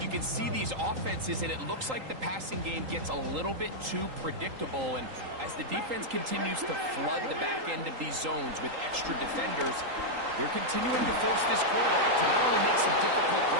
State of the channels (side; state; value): left; late; 3.8 ms